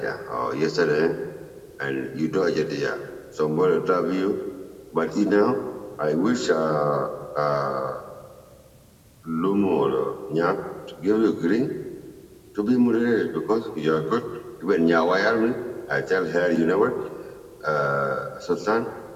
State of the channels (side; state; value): both; identical; correlation 1.00